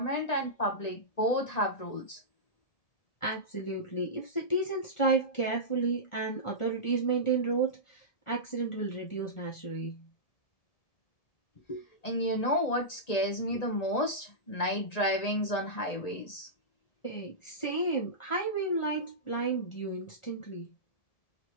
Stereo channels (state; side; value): late; right; 1.9 ms